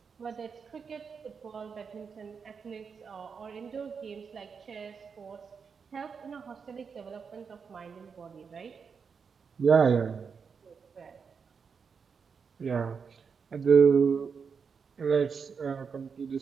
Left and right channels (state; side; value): quieter; left; 5.9 dB